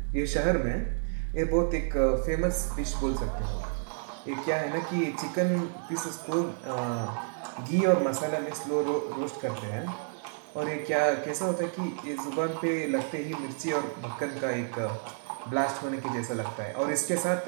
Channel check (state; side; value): silent; left; digital silence